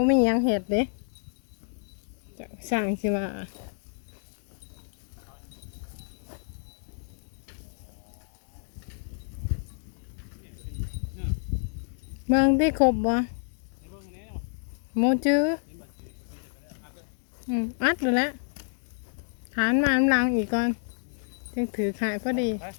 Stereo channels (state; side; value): silent; right; digital silence